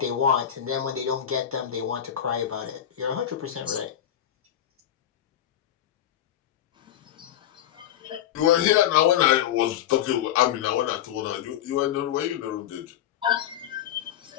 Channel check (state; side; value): quieter; right; 10.9 dB